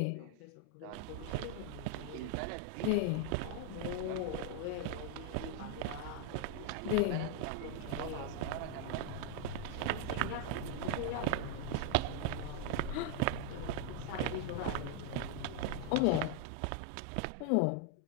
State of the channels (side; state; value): both; different; correlation 0.00